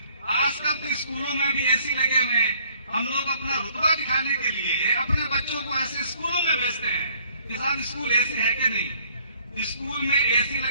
आजकल तो स्कूलों में भी एसी लगे हुए हैं, हम लोग अपना रुतबा दिखाने के लिए अपने बच्चों को ऐसे स्कूलों में भेजते हैं कि साहब स्कूल एसी है कि नहीं। स्कूल में एसी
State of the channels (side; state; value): both; inverted; correlation -0.61